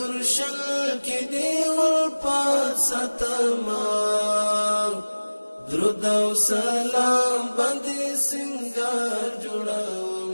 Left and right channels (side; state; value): both; inverted; correlation -1.00